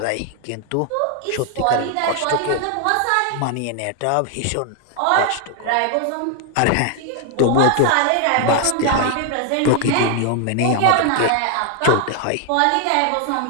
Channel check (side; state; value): both; different; correlation 0.00